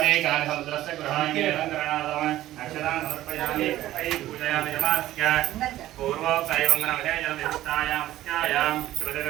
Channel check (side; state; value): left; quieter; 14.5 dB